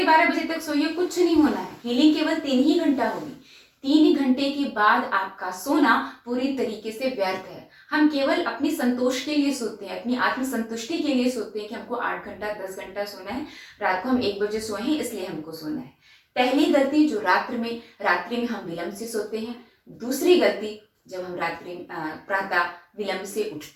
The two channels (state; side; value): identical; both; correlation 1.00